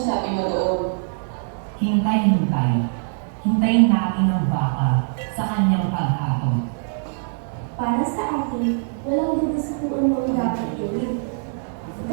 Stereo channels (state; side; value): silent; left; digital silence